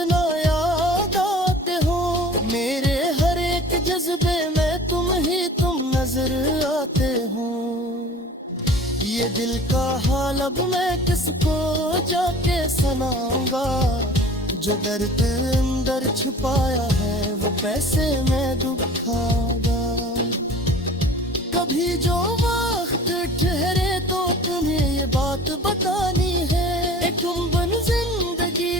याद आते हो। मेरे हर एक जज्बे में तुम नजर आते हो। ये दिल का हाल अब मैं किसको जाके सुनाऊंगा। जो दर्द अंदर छुपाया है वो पैसे में दुखाऊंगा। कभी जो वक्त ठहरे तो तुम्हें ये बात बतानी है। एक गुम्बन जिंदगी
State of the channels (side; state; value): both; normal; correlation 0.44